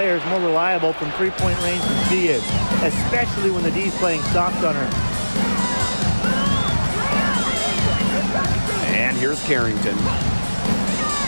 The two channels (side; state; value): both; inverted; correlation -1.00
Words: more reliable from three-point range than she is, especially when the D's playing soft on her. And here's Carrington.